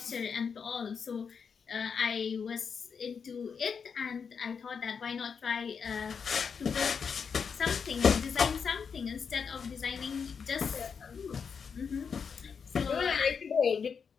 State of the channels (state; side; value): quieter; right; 6.2 dB